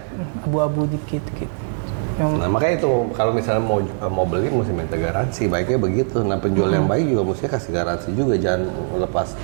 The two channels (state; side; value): silent; left; 65 dB below the other